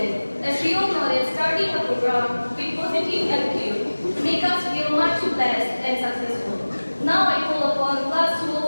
as we all know that starting a program with positive attitude make us feel much blessed and successful. Now I call upon Class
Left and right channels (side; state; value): both; inverted; correlation -1.00